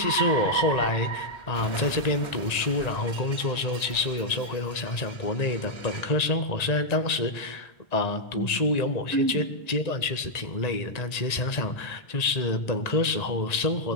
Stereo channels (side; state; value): right; late; 1.9 ms